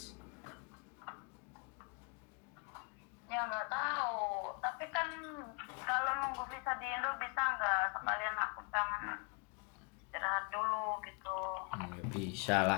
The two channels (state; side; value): quieter; right; 33.7 dB